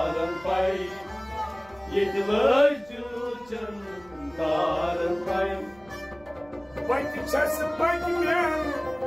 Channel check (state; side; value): noise; right; rumble, 26 dB below the sound